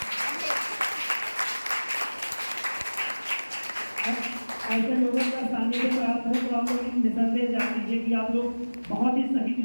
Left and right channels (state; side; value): inverted; both; correlation -1.00